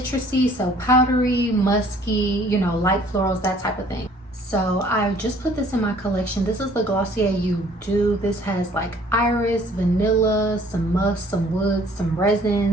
So powdery, musky, light florals, that type of thing. So I just put this in my collection. This is the Glossier You Do. This has like iris, vanilla, some musk, some wood, some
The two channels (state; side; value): normal; both; correlation 0.56